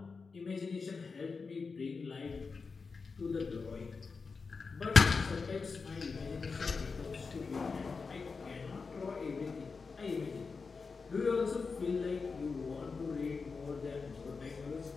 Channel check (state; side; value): quieter; right; 4.8 dB